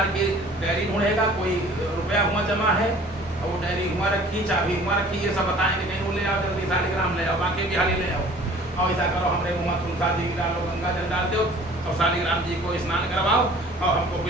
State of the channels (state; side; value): normal; both; correlation 0.49